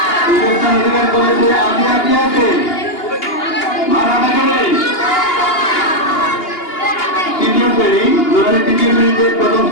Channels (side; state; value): right; late; 2.8 ms